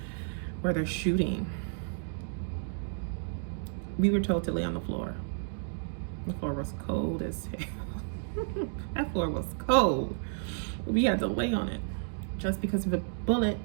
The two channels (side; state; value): left; silent; digital silence